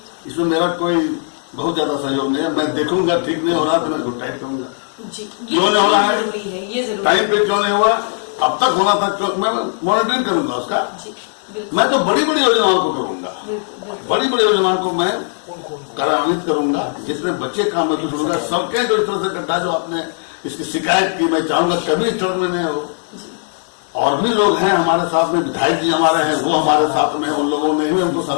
इसमें मेरा कोई बहुत ज्यादा सहयोग नहीं है। मैं देखूंगा ठीक नहीं हो रहा तो मैं गुड टाइप करूंगा जी। क्यों नहीं हो रहा है, जरूरी है, ये जरूरी टाइम पे क्यों नहीं हुआ, अब तक होना था क्यों, मैं मॉनिटरिंग करूंगा उसका। मैं तो बड़ी बड़ी योजनाओं को करूंगा, बड़ी बड़ी योजनाओं को मैं कार्यान्वित करूंगा, जितने बच्चे काम में जुड़ूंगा। सड़कें जो इस तरह से गड्ढा जो आपने इसकी शिकायत की, मैं चाहूंगा कभी इस तरह में नहीं हो। और भी लोग हैं हमारे साथ में, विधायक जी हमारे हैं, वो हमारे साथ में, उन लोगों ने भी हमको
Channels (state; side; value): silent; right; 65 dB below the other